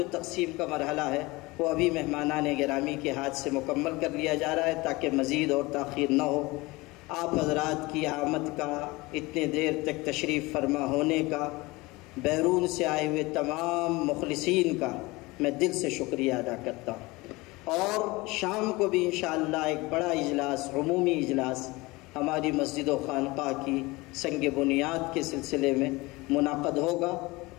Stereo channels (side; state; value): right; quieter; 22.6 dB